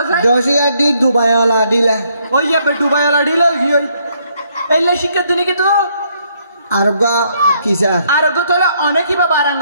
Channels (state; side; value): inverted; both; correlation -0.70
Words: স্যার দশিয়া ডি দুবাই ওলা দিলে ওই যে দুবাই ওলা ডিলা কি ওই এইলে শিক্ষা দিনে কি তো আর ওগা কি স্যার আর ওগো তোলে অনেকই বা বারাং